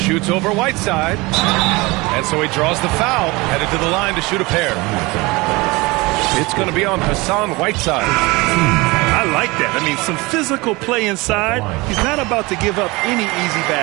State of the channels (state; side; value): quieter; left; 23.5 dB